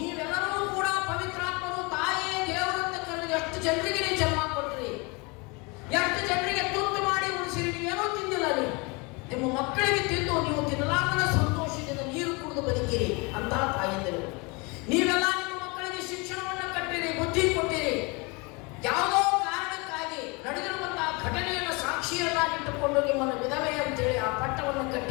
ಕೂಡ ಪವಿತ್ರಾತ್ಮರು, ತಾಯಿ ದೇವರಂತ ಕರೆದು ಎಷ್ಟು ಜನರಿಗೆ ನೀವು ಜನ್ಮ ಕೊಟ್ರಿ, ಎಷ್ಟು ಜನರಿಗೆ ತುತ್ತು ಮಾಡಿ ಉಳಿಸಿರಿ. ನೀವೇನೋ ತಿಂದಿಲ್ಲ, ನೀವು ನಿಮ್ಮ ಮಕ್ಕಳಿಗೆ ತಿಂದು ನೀವು ತಿನ್ನಲಾಗದ ಸಂತೋಷದಿಂದ ನೀರು ಕುಡಿದು ಬದುಕಿರಿ ಅಂತ ತಾಯಂದಿರು. ನೀವೆಲ್ಲ ನಿಮ್ಮ ಮಕ್ಕಳಿಗೆ ಶಿಕ್ಷಣವನ್ನು ಕಟ್ಟಿರಿ, ಬುದ್ಧಿ ಕೊಟ್ಟಿರಿ. ಯಾವುದೋ ಕಾರಣಕ್ಕಾಗಿ ನಡೆದಿರುವಂತಹ ಘಟನೆಯನ್ನು ಸಾಕ್ಷಿಯನ್ನಾಗಿಟ್ಟುಕೊಂಡು ನಿಮ್ಮನ್ನು ವಿಧವೆ ಅಂತೇಳಿ ಆ ಪಟ್ಟವನ್ನು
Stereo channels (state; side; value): quieter; right; 28.4 dB